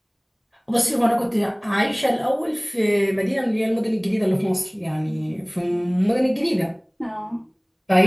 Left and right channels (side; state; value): both; identical; correlation 1.00